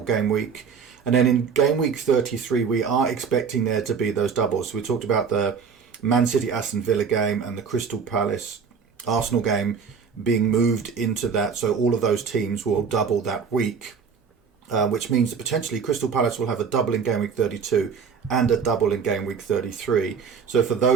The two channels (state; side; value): quieter; left; 6.1 dB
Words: game week? And then in game week 33, we are expecting there to be those doubles. So we talked about the Man City Aston Villa game and the Crystal Palace Arsenal game being moved into that, so all of those teams will double that week. Which means that potentially Crystal Palace will have a double in game week 32 and a double in game week 33. So for